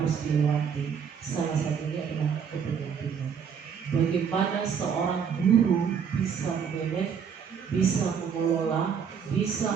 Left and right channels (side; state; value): left; quieter; 7.0 dB